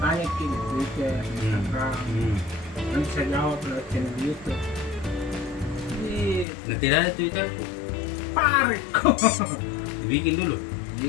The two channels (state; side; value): drops out; right; at 6.5 s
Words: ke di Twitter, Instagram. Nanti saya jawab lewat channel YouTube. Nah, tidak ada Twitter tuh. Parek kok. Bikin dulu.